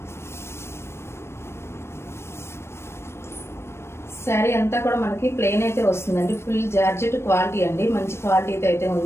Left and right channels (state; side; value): late; right; 0.12 ms